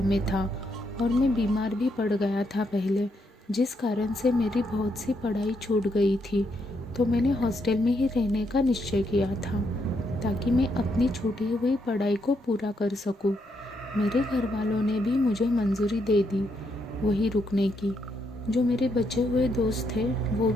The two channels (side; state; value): both; normal; correlation 0.77